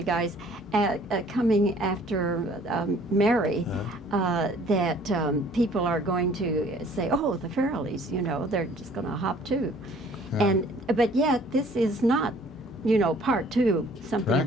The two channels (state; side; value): normal; both; correlation 0.55